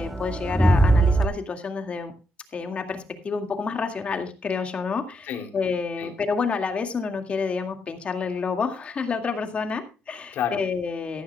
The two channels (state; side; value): normal; both; correlation 0.80